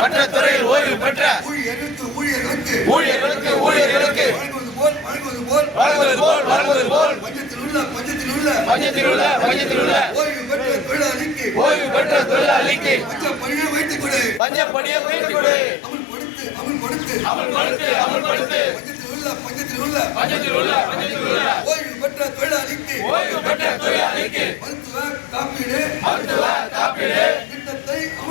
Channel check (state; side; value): drops out; right; at 14.4 s